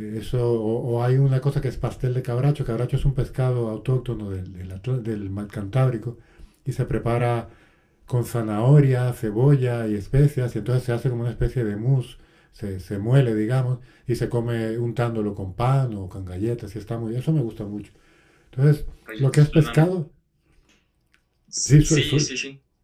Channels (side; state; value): both; identical; correlation 1.00